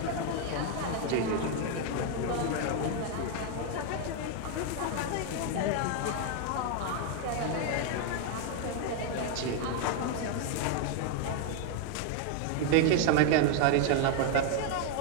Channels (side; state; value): both; different; correlation 0.00